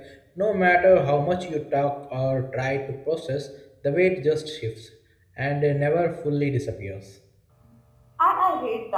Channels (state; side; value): identical; both; correlation 1.00